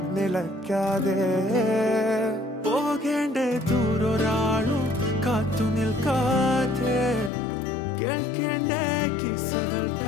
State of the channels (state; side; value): drops out; right; at 7.3 s